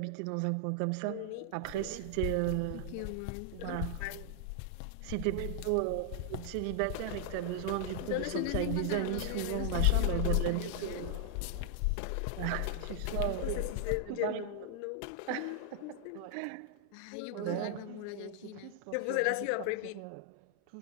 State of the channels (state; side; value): different; both; correlation 0.00